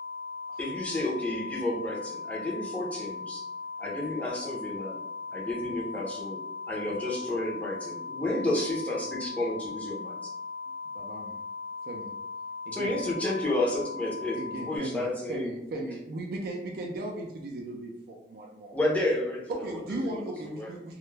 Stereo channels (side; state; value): both; normal; correlation 0.42